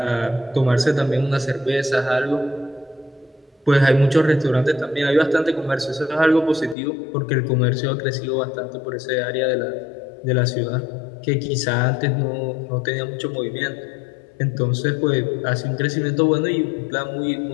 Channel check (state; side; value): drops out; right; at 6.8 s